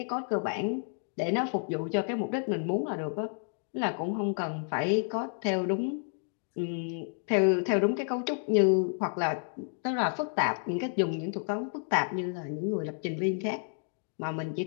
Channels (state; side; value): silent; right; 57 dB below the other